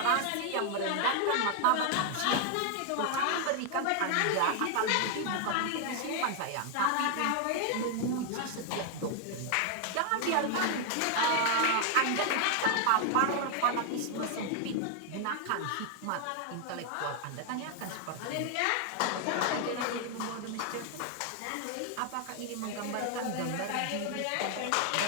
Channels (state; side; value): different; both; correlation 0.00